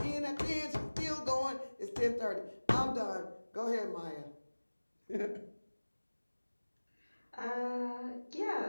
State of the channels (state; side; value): inverted; both; correlation -1.00